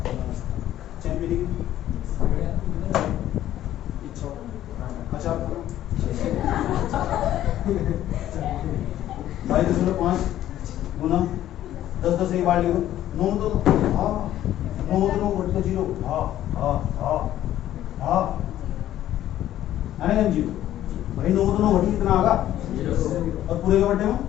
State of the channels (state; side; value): quieter; right; 12.7 dB